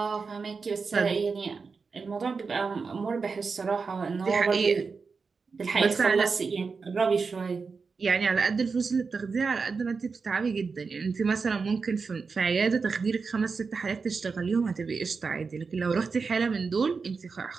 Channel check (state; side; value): quieter; left; 4.9 dB